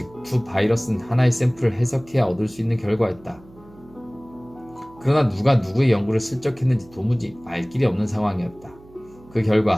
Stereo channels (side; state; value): right; noise; hum, 24 dB below the sound